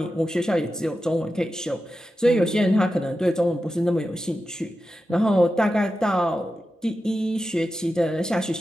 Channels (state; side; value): normal; both; correlation 0.91